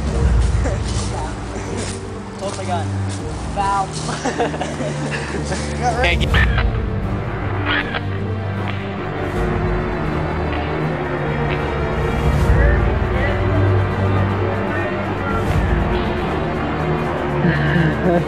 Hold my gun. Foul.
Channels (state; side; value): identical; both; correlation 1.00